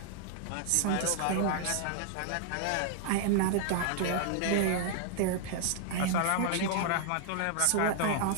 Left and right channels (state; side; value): different; both; correlation 0.00